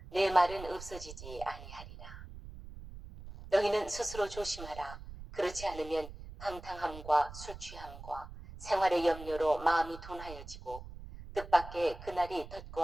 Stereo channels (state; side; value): noise; right; rumble, 13 dB below the sound